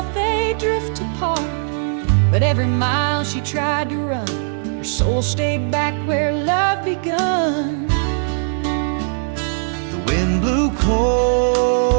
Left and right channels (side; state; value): left; silent; digital silence